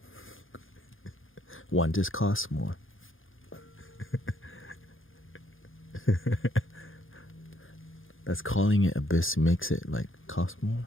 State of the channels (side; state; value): right; late; 0.59 ms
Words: One just costs more. That's calling it a bisque makes it like cost more.